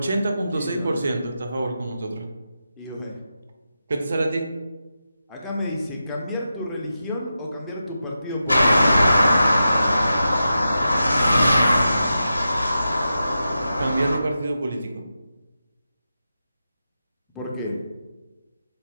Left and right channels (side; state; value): both; inverted; correlation -0.89